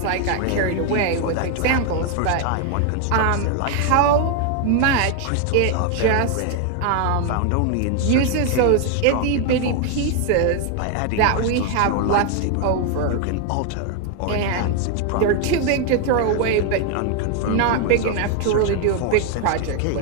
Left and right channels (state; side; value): different; both; correlation 0.00